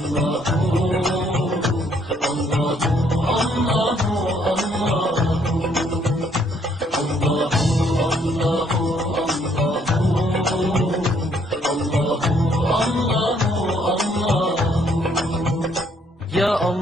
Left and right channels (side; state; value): both; normal; correlation 0.67